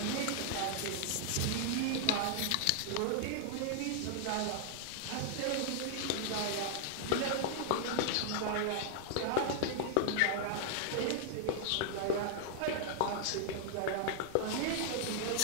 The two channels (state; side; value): different; both; correlation -0.01